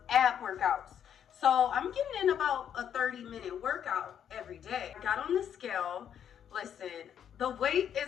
ab workouts. So I'm getting in about a 30-minute workout every day. I got on the scale. Listen, the weight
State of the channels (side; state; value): right; quieter; 9.0 dB